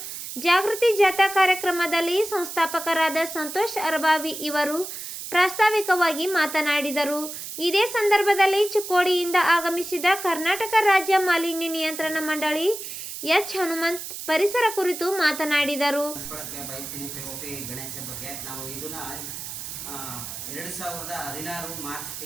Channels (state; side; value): noise; right; hiss, 8 dB below the sound